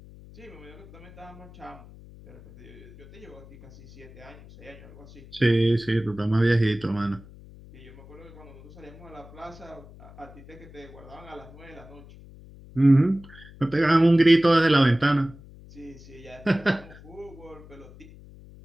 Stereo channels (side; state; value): left; noise; hum, 20 dB below the sound